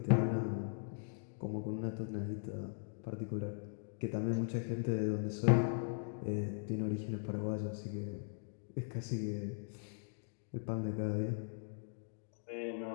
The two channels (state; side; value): silent; right; digital silence